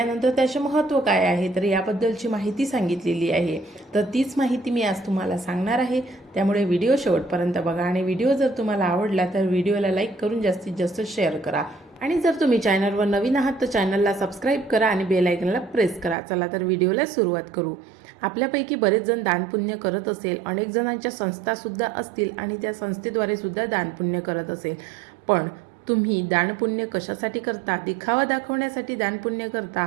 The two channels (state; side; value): drops out; left; at 16.2 s